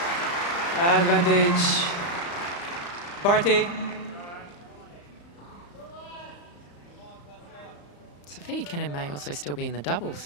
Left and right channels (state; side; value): late; right; 35 ms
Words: Advantage. Barty. Sophia Cain may also still be in the doubles.